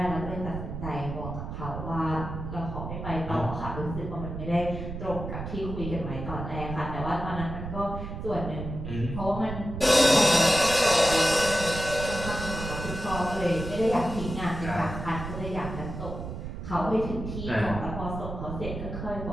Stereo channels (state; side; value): noise; right; rumble, 7 dB below the sound